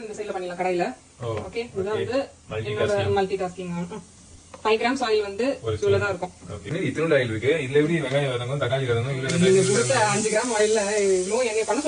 இந்த சைடுல பண்ணிடலாம் கடாயில. ஓகே, இதுதான் வந்து என்னோட மல்டி டாஸ்கிங். 5 கிராம்ஸ் ஆயில் வந்து இவ்வளவு தான் இருக்கும். ஓகே, இத்தனோட ஆயில் இருக்கு. இதுல எப்படி வெங்காயம் வதங்கும், தக்காளி வதங்கும், இல்ல நீங்க கொடுத்த 5 கிராம் ஆயில்ல இவ்ளோ என்னைய பண்ண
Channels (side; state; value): both; identical; correlation 1.00